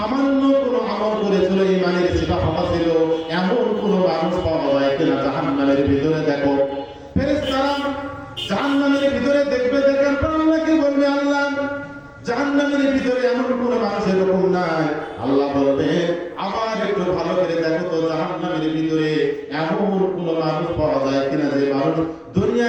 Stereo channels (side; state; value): both; identical; correlation 1.00